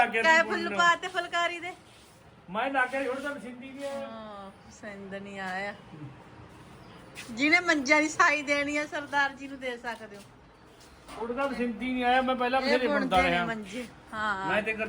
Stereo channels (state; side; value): identical; both; correlation 1.00